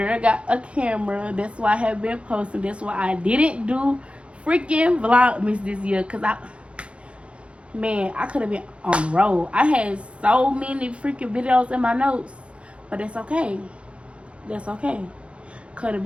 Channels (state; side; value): late; left; 0.060 ms